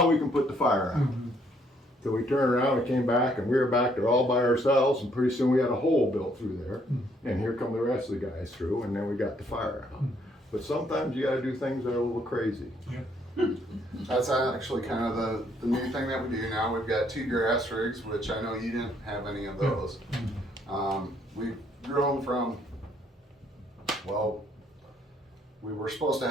we can put the fire out." So we turned around and came back, and we were back there all by ourselves, and pretty soon we had a hole built through there, and here come the rest of the guys through, and then we got the fire out. But sometimes you gotta do things that are a little crazy. that's actually kind of the new thing that we do now. We've got 2 grass rigs, which I know you didn't have any of those. We've grown from, well, we were supposed to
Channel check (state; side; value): normal; both; correlation 0.68